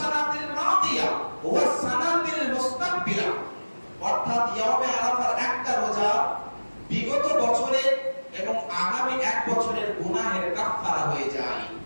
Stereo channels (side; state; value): both; inverted; correlation -1.00